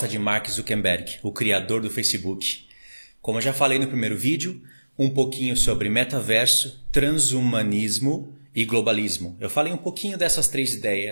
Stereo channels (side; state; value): both; inverted; correlation -1.00